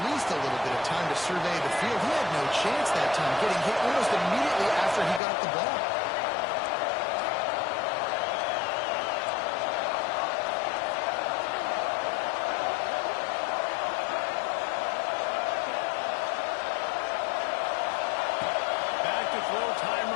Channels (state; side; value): drops out; right; at 5.2 s